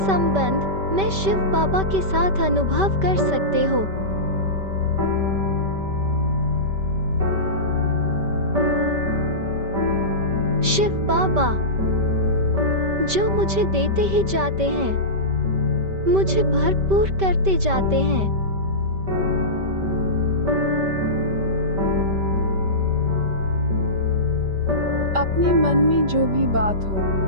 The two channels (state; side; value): late; left; 5.2 ms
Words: संबंध मैं शिव बाबा के साथ अनुभव कर सकते हो। शिव बाबा, जो मुझे देते ही जाते हैं, मुझे भरपूर करते जाते हैं। अपने मन में जो भी बात